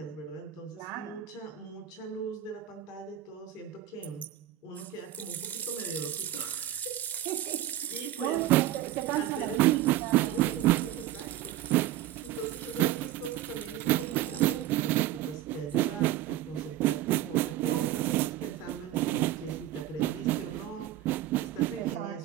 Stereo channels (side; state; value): left; quieter; 13.0 dB